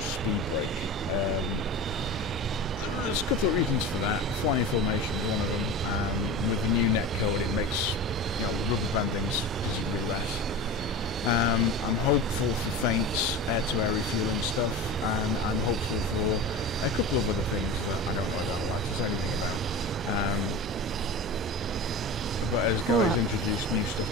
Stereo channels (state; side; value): normal; both; correlation 0.30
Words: brake. There's a couple of reasons for that. Flying formation is one of them. With the new netcode, it makes rubber bandings considerably less. I'm hopeful for feints, air-to-air refueling stuff, and I'm hopeful for a couple of other things that I don't like to say anything about. But as guys introduced new stuff